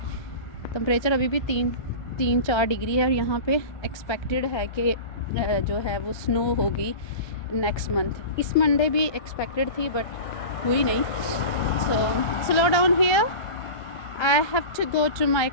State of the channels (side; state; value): right; late; 1.3 ms